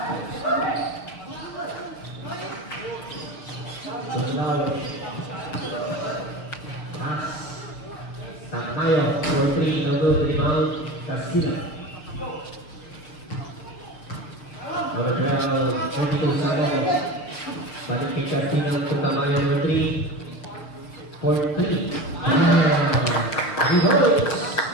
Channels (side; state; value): right; late; 6.9 ms